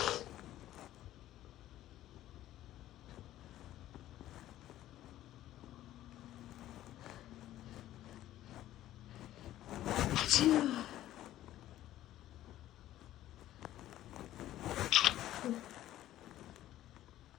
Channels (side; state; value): right; quieter; 13.7 dB